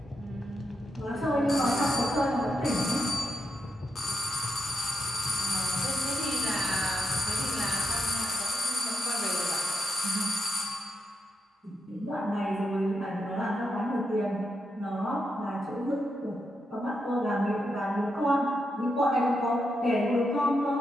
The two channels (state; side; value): normal; both; correlation 0.84